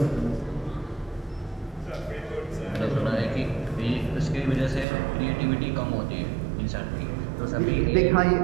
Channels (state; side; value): drops out; left; at 4.9 s